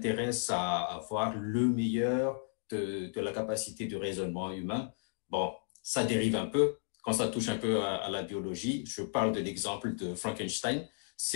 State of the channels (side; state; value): right; silent; digital silence